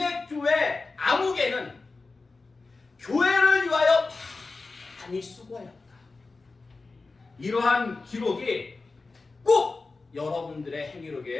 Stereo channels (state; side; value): quieter; right; 3.8 dB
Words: 암흑에는 교회를 위하여 많이 수고하였다. 이러한 기록이 꼭 여러분들의